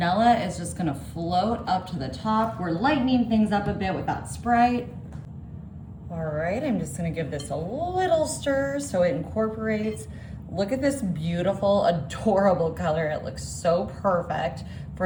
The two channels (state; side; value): identical; both; correlation 1.00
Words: is just gonna float up to the top. We're lightening things up a bit with that Sprite. All right, I'm just gonna give this a little stir so it incorporates. Look at this beautiful, adorable color. It looks so perfect